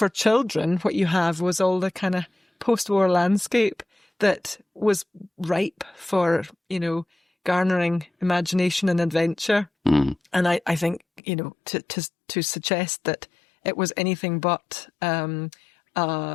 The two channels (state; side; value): drops out; right; at 11.2 s